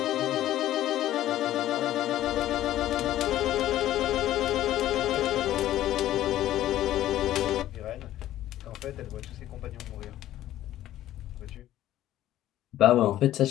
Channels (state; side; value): quieter; right; 13.4 dB